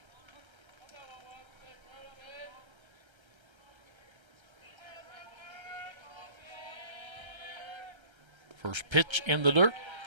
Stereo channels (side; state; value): left; late; 1.3 ms